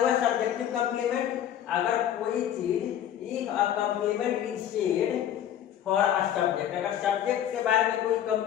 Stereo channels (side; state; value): right; quieter; 10.6 dB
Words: सब्जेक्टिव कंप्लीमेंट। अगर कोई चीज, if a complement is said for a subject, अगर सब्जेक्ट के बारे में कोई